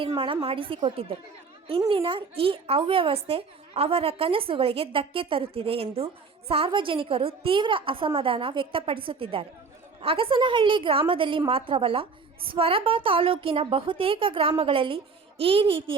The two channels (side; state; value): left; quieter; 4.8 dB